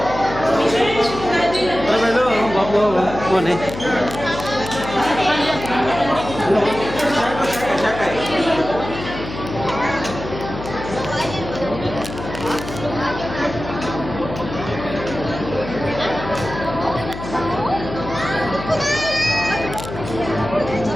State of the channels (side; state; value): left; noise; hum, 9 dB below the sound